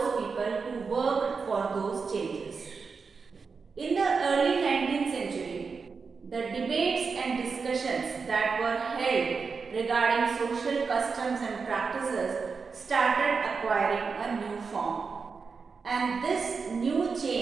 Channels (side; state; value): left; quieter; 5.1 dB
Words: people who worked for those changes. In the early 19th century, the debates and discussions that were held regarding social customs and practices started acquiring a new form. And this new